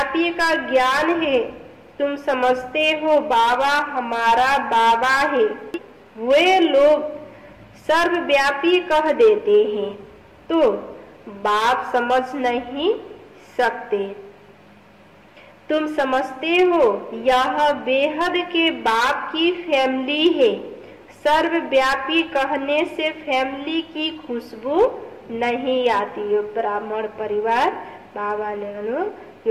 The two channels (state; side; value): identical; both; correlation 1.00